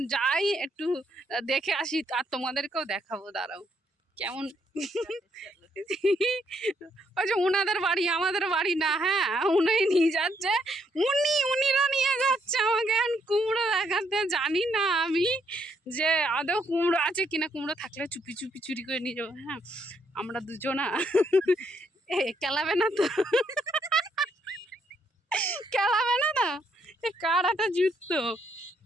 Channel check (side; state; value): both; normal; correlation 0.73